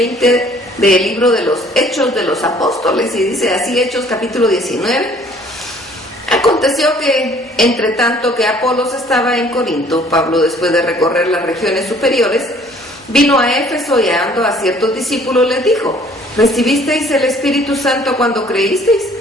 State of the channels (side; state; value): both; normal; correlation 0.57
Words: del libro de los Hechos de los Apóstoles, y dice así Hechos capítulo 19. Aconteció que, entre tanto que Apolos estaba en Corinto, Pablo, después de recorrer las regiones superiores, vino a Éfeso, y hallando a ciertos discípulos les dijo: ¿recibisteis el Espíritu Santo cuando creísteis?